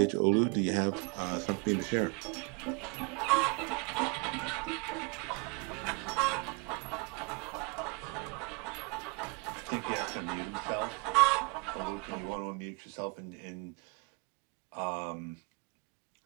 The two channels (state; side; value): quieter; left; 31.9 dB